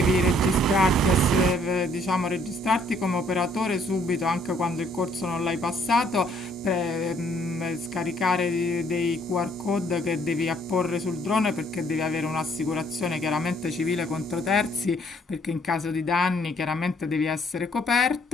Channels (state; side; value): normal; both; correlation 0.64